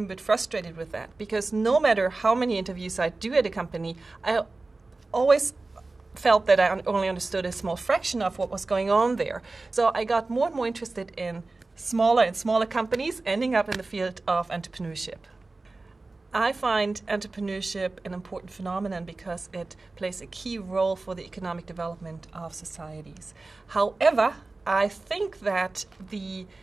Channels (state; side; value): quieter; left; 3.4 dB